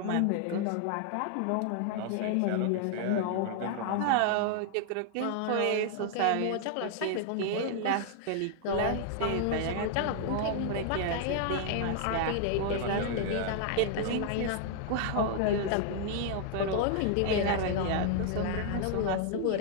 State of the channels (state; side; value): different; both; correlation 0.00